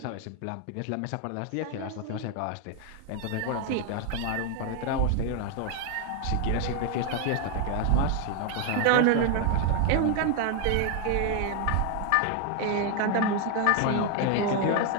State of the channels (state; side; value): different; both; correlation 0.01